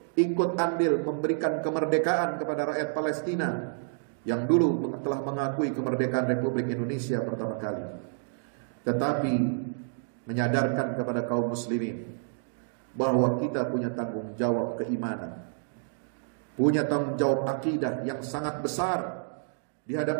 ikut andil memberikan kemerdekaan kepada rakyat Palestina yang dulu telah mengakui kemerdekaan Republik Indonesia pertama kali, tetapi menyadarkan kepada kaum muslimin bahwa kita punya tanggung jawab keimanan, punya tanggung jawab akidah yang sangat besar di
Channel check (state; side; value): silent; left; digital silence